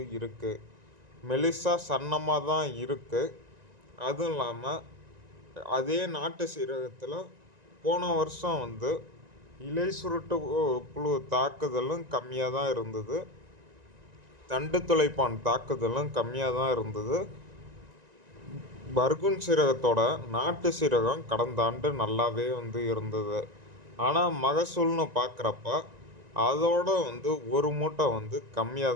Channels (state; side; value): late; left; 1.9 ms